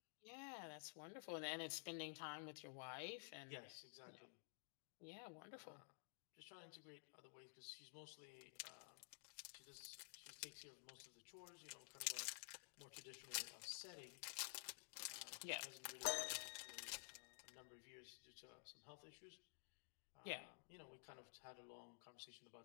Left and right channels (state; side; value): silent; right; digital silence